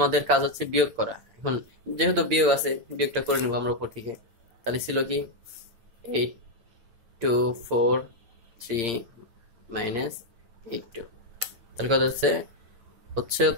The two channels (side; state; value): left; late; 8.7 ms